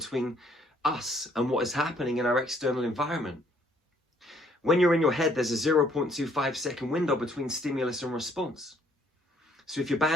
us and what is happening in our external environment. When you're in your head, there's a 0.25 second window between stimulus and response. So if you're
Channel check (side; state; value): both; normal; correlation 0.65